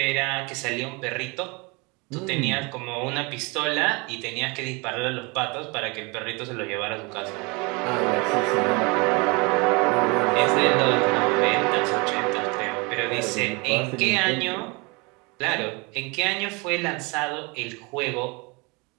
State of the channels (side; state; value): left; quieter; 28.4 dB